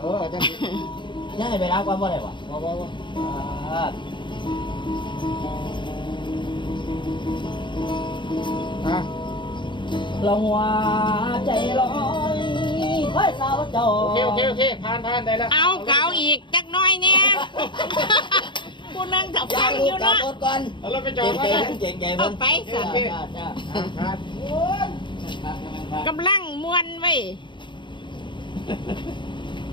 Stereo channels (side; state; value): right; late; 0.23 ms